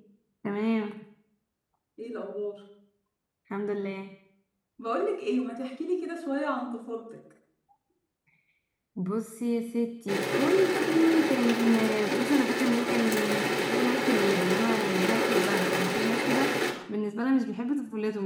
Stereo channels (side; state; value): both; identical; correlation 1.00